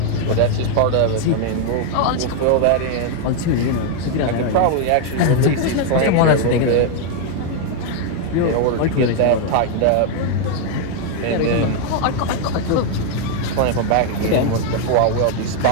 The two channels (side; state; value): both; different; correlation 0.00